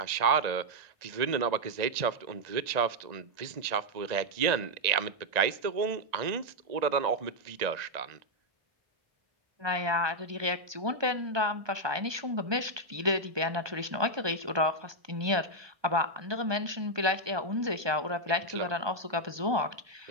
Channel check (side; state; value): left; late; 1.2 ms